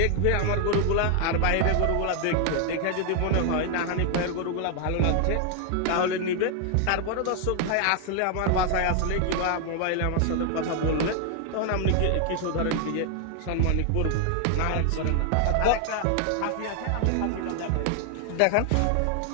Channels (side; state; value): both; different; correlation 0.00